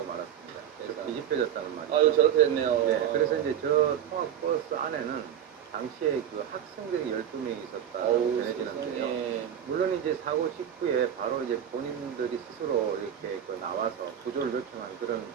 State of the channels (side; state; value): left; quieter; 9.6 dB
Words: 말았습니다. 그래서 뒤집혀졌다는 말이죠. 아유, 저렇게 됐네요. 네, 그래서 이제 저 통학버스 안에는 당시에 그 학생들이 12명이 있었다 어우, 전해지는데요. 세상에. 물론 이제 사고 직후에 바로 이제 본인들이 스스로 이렇게 나와서 구조를 요청한 그런